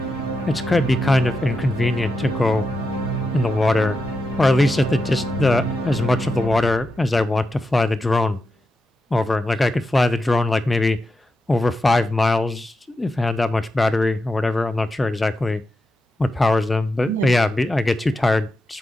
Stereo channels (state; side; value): normal; both; correlation 0.88